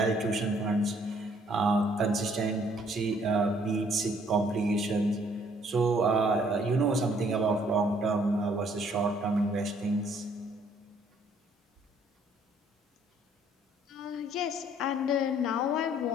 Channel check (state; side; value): normal; both; correlation 0.63